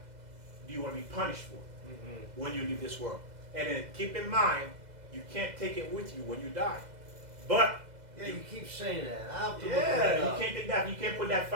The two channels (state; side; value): late; left; 2.0 ms